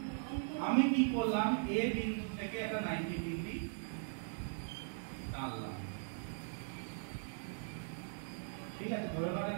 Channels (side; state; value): left; silent; digital silence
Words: আমি কি করলাম, এ বিন্দু থেকে একটা 90 ডিগ্রি টানলাম, ঠিক আছে, ধরে নাও